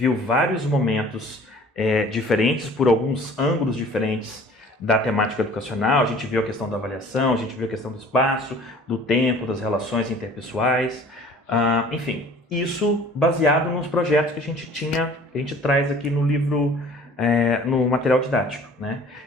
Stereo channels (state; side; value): normal; both; correlation 0.49